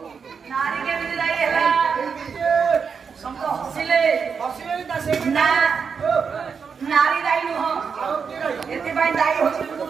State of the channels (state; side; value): quieter; left; 6.0 dB